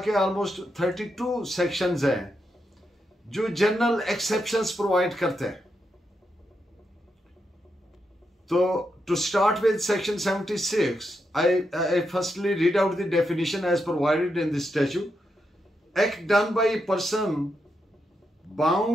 ऑलमोस्ट 32 सेक्शंस हैं जो जनरल एक्सेप्शंस प्रोवाइड करते हैं। So, to start with section 76, I firstly read out the definition as provided in the statute. Act done by a person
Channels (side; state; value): both; normal; correlation 0.84